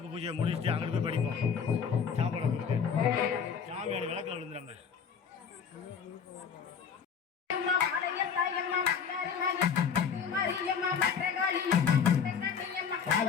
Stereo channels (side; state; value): right; quieter; 6.8 dB